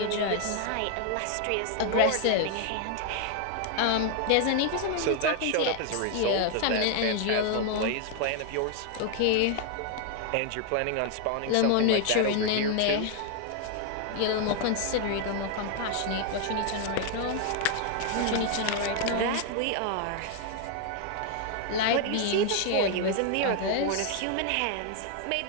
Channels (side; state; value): both; different; correlation 0.00